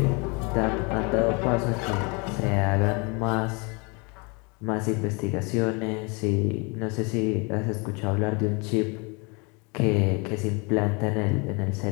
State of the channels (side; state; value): right; quieter; 30.7 dB